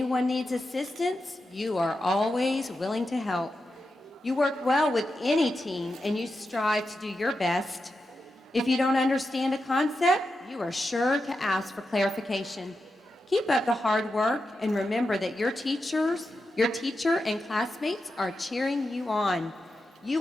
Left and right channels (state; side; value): normal; both; correlation 0.89